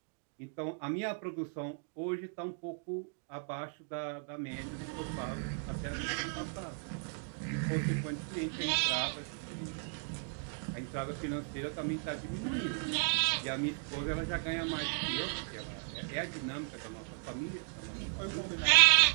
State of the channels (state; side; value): silent; left; 54 dB below the other